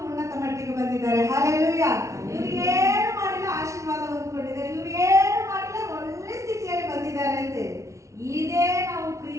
ಉನ್ನತ ಮಟ್ಟಿಗೆ ಬಂದಿದ್ದಾರೆ. ಹಲ್ಲೆಲೂಯಾ. ಇವರು ಏನು ಮಾಡಿಲ್ಲ ಆಶೀರ್ವಾದ ಹೊಂದಿಕೊಂಡಿದ್ದಾರೆ, ಇವರು ಏನು ಮಾಡಿಲ್ಲ ಒಳ್ಳೆ ಸ್ಥಿತಿಯಲ್ಲಿ ಬಂದಿದ್ದಾರೆ ಅಂತ. ಇದೇ ನಾವು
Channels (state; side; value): late; left; 0.14 ms